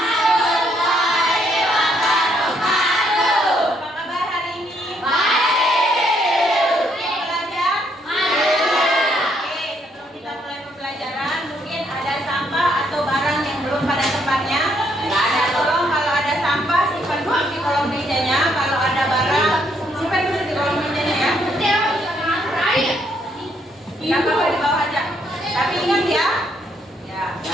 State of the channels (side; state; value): both; normal; correlation 0.72